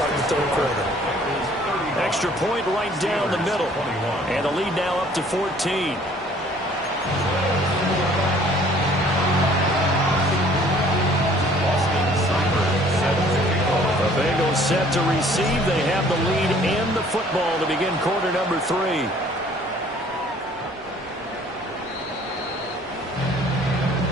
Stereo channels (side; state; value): both; normal; correlation 0.56